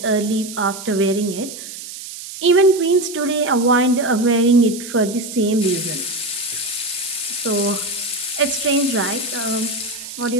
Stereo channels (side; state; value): right; noise; hiss, 11 dB below the sound